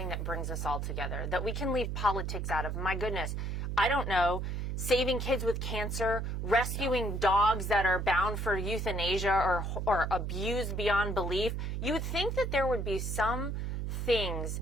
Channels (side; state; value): right; noise; hum, 2 dB below the sound